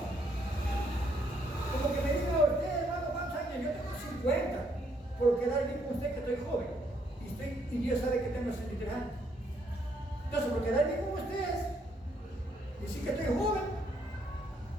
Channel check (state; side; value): normal; both; correlation 0.71